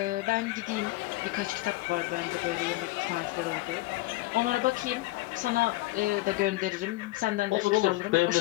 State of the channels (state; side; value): quieter; right; 18.8 dB